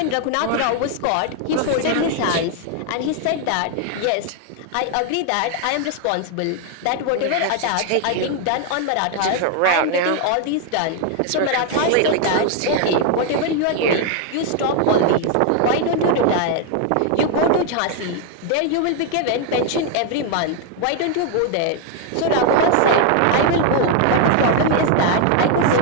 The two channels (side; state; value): both; different; correlation 0.00